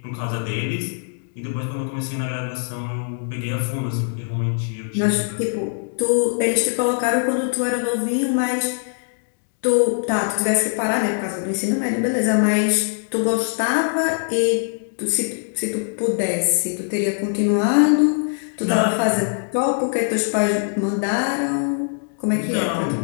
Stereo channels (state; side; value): silent; right; digital silence